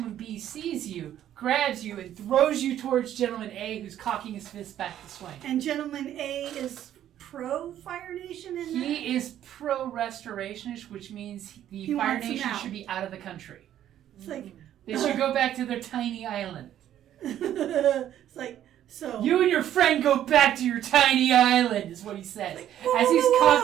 B sees you, grabs you, and throws you towards Gentleman A, who's cocking his fist back to swing. And Gentleman A is pro-Fire Nation in that? He is pro-restorationist, which means the He Fire wants him Nation out. should be out of the country. It's like, They should go back to their tiny island. it's like, so. You and your friend go back to your tiny island, is what he says. As he's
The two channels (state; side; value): quieter; left; 11.3 dB